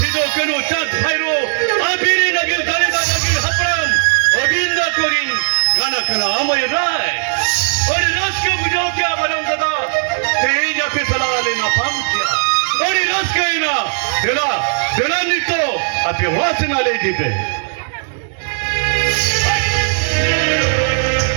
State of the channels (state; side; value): silent; left; digital silence